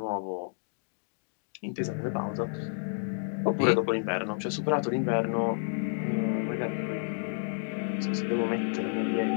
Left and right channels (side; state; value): right; silent; digital silence